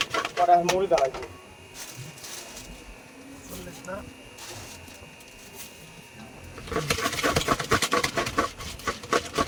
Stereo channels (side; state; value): both; identical; correlation 1.00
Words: কড়া মুড়ি দাঁড়াইবে না